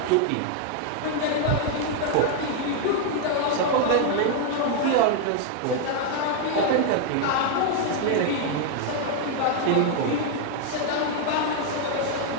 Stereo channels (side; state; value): both; different; correlation 0.00